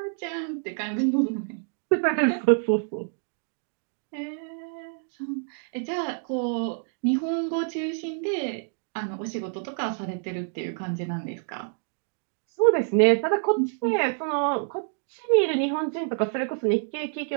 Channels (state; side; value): silent; left; 60 dB below the other